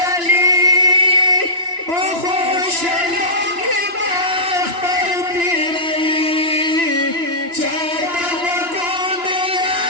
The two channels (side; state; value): left; late; 2.9 ms